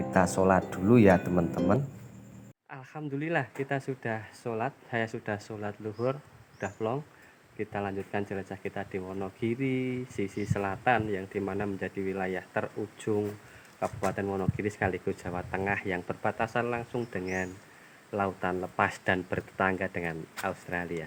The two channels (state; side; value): identical; both; correlation 1.00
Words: sholat dulu ya teman-teman. Alhamdulillah kita sudah sholat, saya sudah sholat luhur, udah plong. Kita lanjutkan jelajah kita di Wonogiri sisi selatan, yang dimana menjadi wilayah terujung Kabupaten Wonogiri sekaligus Jawa Tengah, yang berbatasan langsung dengan lautan lepas dan bertetangga dengan Australia.